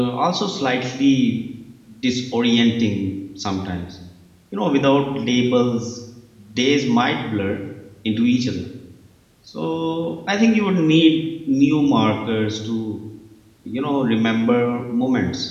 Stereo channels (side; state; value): both; identical; correlation 1.00